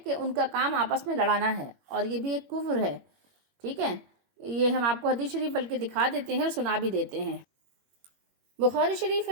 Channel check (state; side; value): late; left; 21 ms